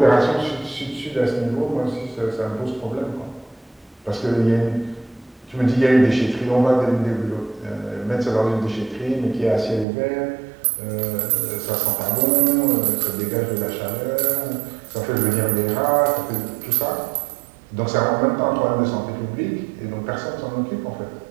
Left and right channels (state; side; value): drops out; left; at 9.9 s